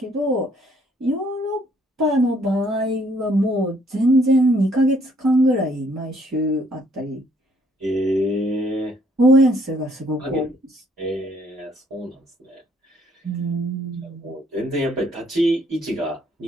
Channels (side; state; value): both; normal; correlation 0.65